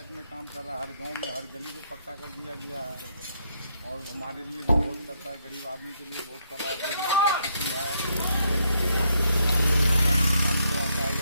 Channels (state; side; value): inverted; both; correlation -0.74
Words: में काम कर रहा है, हर गांव में हर गली को पक्का कर दिया गया है और हमारे लिए भी बहुत करता है, गरीब आदमी के लिए बहुत कर रहा है।